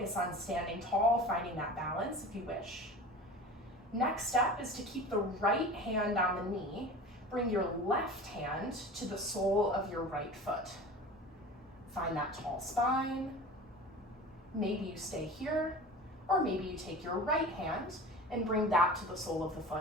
on standing tall, finding that balance if you wish. Next step is to keep the right hand on the knee. Bring your left hand to the sole of your right foot. Find that tall spine. Maybe you stay here, or maybe you take your right hand and bring that to the sole of the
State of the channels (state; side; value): normal; both; correlation 0.36